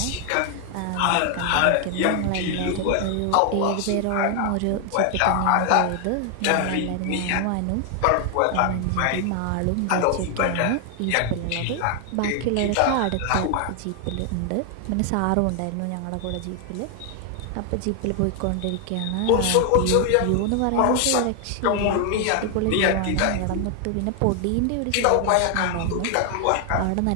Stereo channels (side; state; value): both; different; correlation 0.00